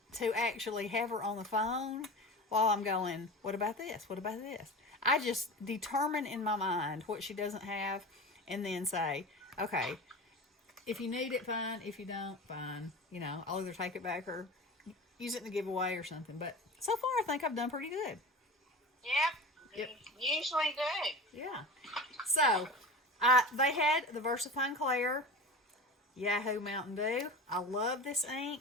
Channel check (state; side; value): normal; both; correlation 0.31